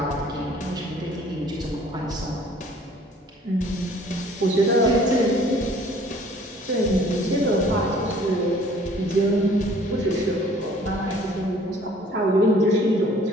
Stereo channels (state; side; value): normal; both; correlation 0.54